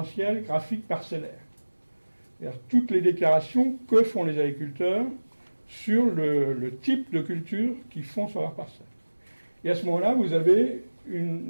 graphiques parcellaires. C'est-à-dire toutes les déclarations que font les agriculteurs sur le type de culture qu'ils font sur leur parcelle. Et à ce moment-là, vous avez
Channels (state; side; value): inverted; both; correlation -1.00